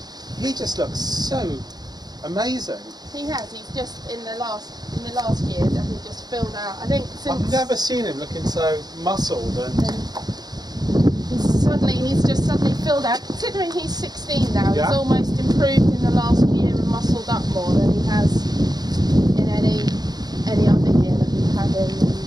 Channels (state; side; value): late; left; 0.19 ms